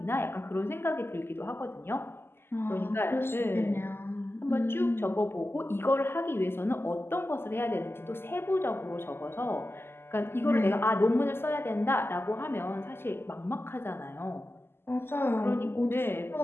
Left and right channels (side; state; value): right; late; 0.12 ms